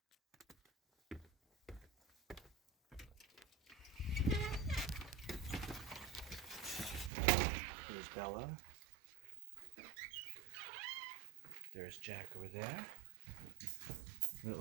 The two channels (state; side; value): drops out; left; at 7.1 s